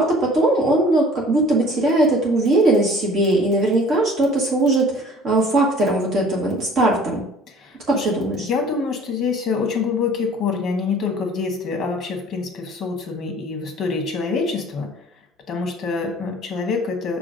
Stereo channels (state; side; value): normal; both; correlation 0.49